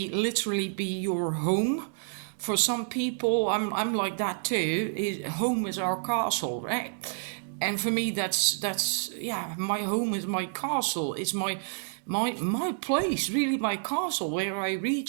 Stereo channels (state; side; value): silent; left; digital silence